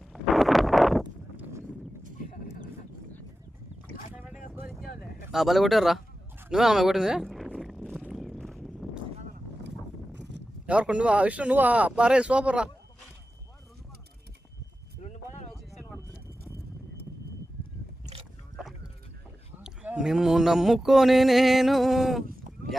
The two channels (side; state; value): both; normal; correlation 0.93